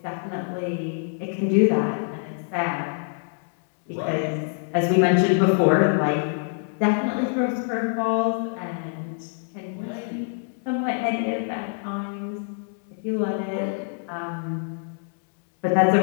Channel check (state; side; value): silent; right; 62 dB below the other